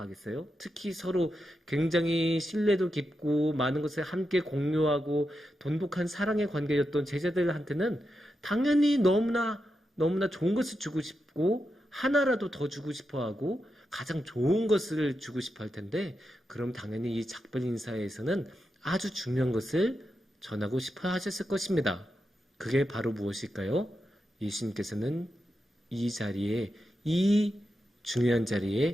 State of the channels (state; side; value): normal; both; correlation 0.87